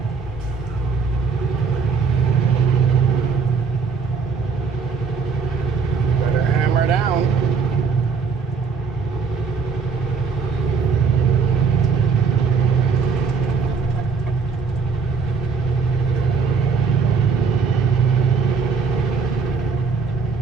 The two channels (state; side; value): quieter; left; 5.4 dB